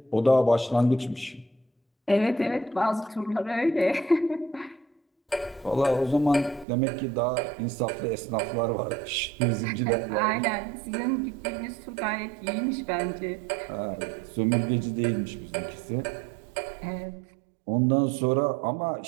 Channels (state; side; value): drops out; left; at 6.7 s